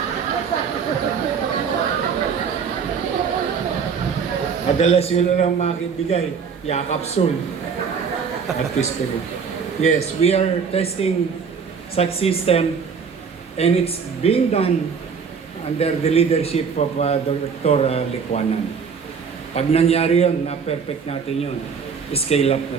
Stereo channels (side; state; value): left; quieter; 6.1 dB